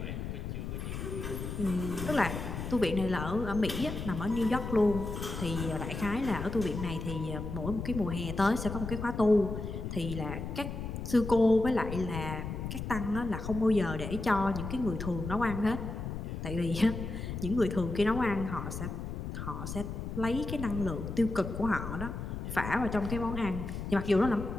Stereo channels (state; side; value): noise; left; rumble, 6 dB below the sound